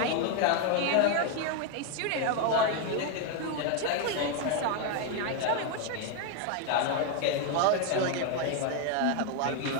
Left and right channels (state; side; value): different; both; correlation 0.01